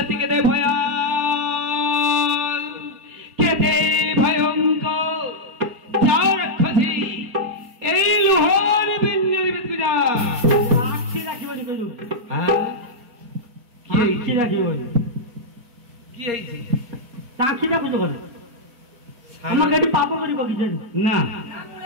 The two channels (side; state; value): left; late; 4.5 ms